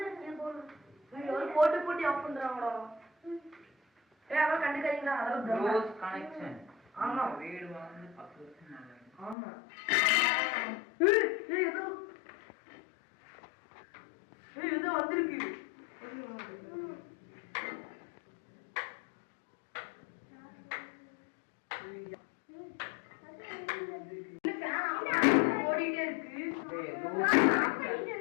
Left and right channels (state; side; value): drops out; right; at 9.3 s